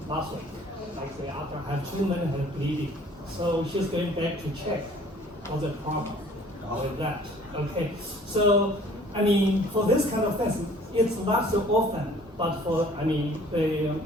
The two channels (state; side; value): normal; both; correlation 0.53